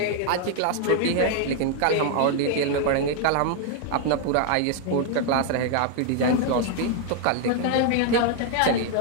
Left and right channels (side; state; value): both; different; correlation 0.00